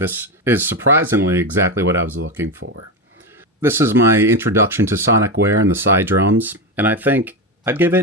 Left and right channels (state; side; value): normal; both; correlation 0.15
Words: is surprisingly exactly what I was looking for. This is my introduction to Sonicware and the CyDrums, and I think I'd give